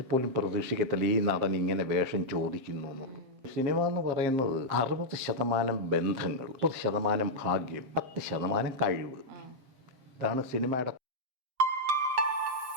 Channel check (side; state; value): left; late; 7.5 ms